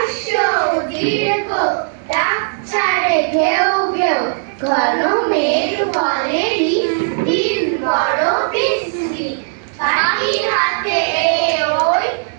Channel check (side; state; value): left; silent; digital silence